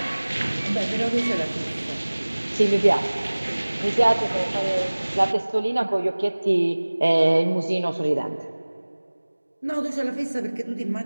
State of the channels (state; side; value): inverted; both; correlation -1.00